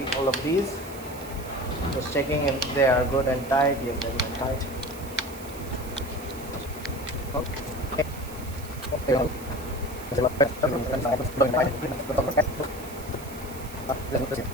of these, just checking if they are good and tight. Yes, they're good and tight. Okay.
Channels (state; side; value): noise; right; hiss, 16 dB below the sound